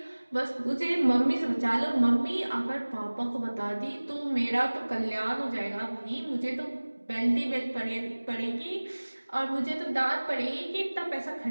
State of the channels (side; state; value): both; inverted; correlation -1.00